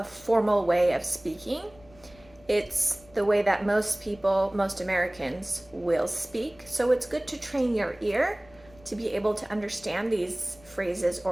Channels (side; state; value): left; noise; rumble, 25 dB below the sound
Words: formal way of speaking. It's the way that most people, most Americans will speak. So it's good to train your ear to be able to understand these phrases